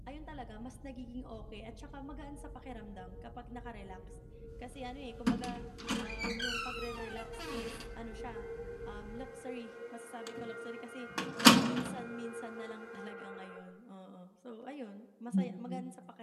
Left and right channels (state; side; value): identical; both; correlation 1.00